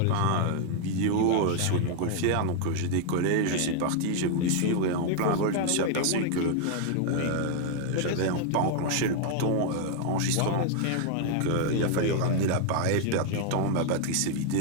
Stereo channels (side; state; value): both; different; correlation 0.00